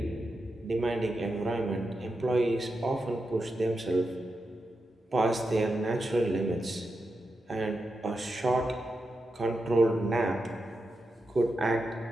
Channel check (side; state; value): both; normal; correlation 0.88